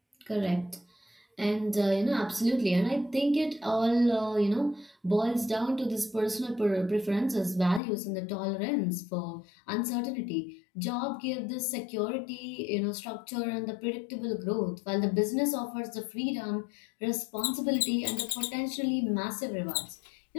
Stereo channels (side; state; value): right; drops out; at 7.8 s